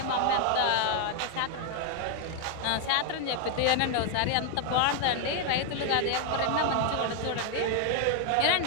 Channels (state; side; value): different; both; correlation 0.00